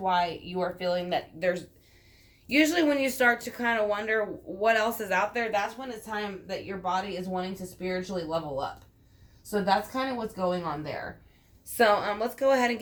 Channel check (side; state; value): both; identical; correlation 1.00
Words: you are feeling that there's, usually when you start to kind of wonder what else is out there, that's when it's time that your body is wanting to spiritually level up. So that's kind of what's going on there. So let's go ahead and